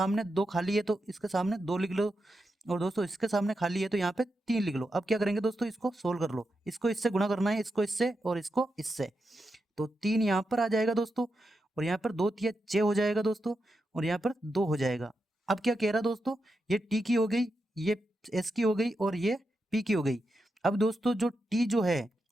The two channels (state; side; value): normal; both; correlation 0.87